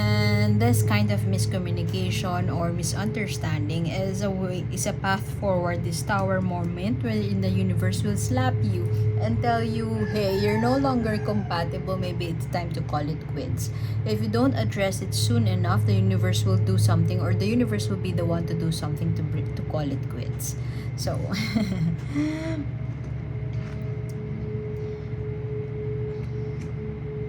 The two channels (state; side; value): identical; both; correlation 1.00